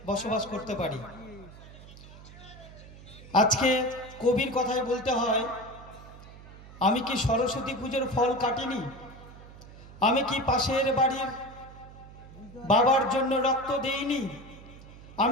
বসবাস করতে পারি। আজকে কবির কথায় বলতে হয়, আমি কি সরস্বতী পুজোর ফল কাটিনি? আমি কি পাশের বাড়ির বাবার জন্য রক্ত দেইনি?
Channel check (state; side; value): noise; right; hum, 18 dB below the sound